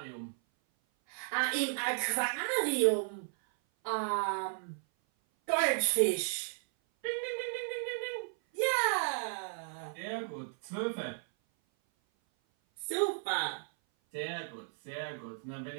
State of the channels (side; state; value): left; silent; 55 dB below the other